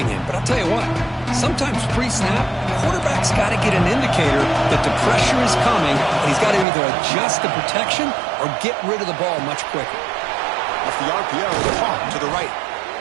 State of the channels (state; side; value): drops out; left; at 6.7 s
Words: him? But I'll tell you what, sometimes pre-snap, the quarterback's got to get an indicator that the pressure is coming, and he's got to either adjust the protection or get rid of the ball much quicker. Off the RPO, caught to the right.